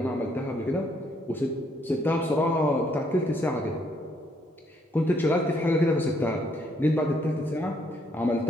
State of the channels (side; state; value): both; normal; correlation 0.70